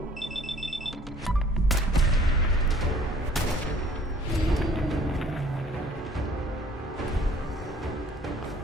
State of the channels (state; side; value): normal; both; correlation 0.55